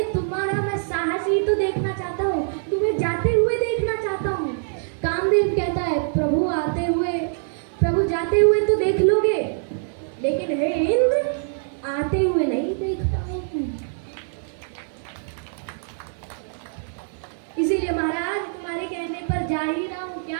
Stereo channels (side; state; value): left; silent; digital silence